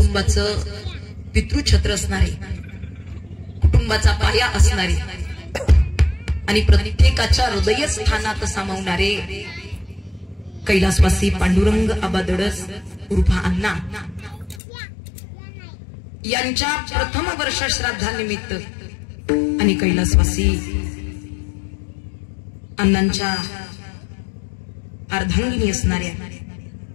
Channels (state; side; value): drops out; right; at 14.6 s